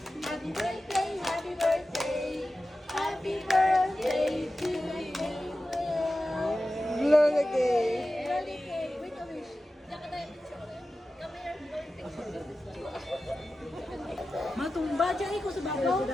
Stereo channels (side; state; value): both; normal; correlation 0.94